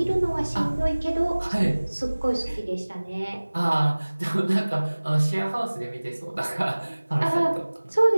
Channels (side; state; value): both; inverted; correlation -1.00